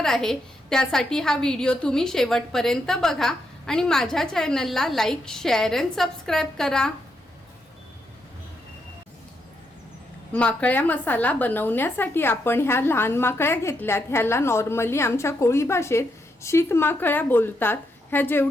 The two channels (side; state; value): both; normal; correlation 0.80